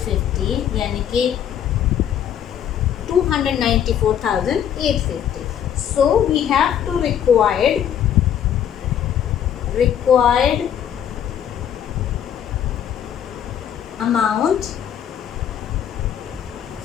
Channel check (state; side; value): quieter; right; 9.5 dB